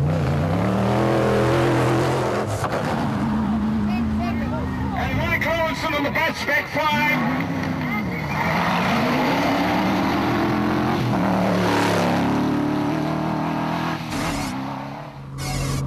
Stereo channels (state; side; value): identical; both; correlation 1.00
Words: And Mike Lawson on the bus, spec 5.